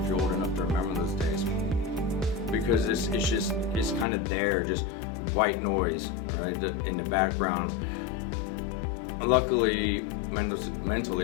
you're old enough to remember those days. Because it's kind of there, just white noise, right, in the background. Luckily,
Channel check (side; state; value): right; drops out; at 4.0 s